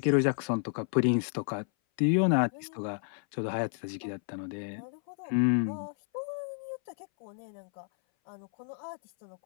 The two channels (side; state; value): right; silent; 57 dB below the other